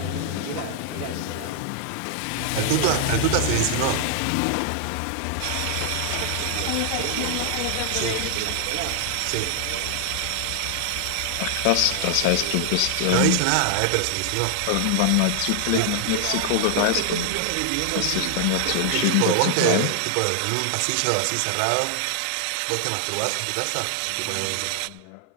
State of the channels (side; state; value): both; different; correlation 0.00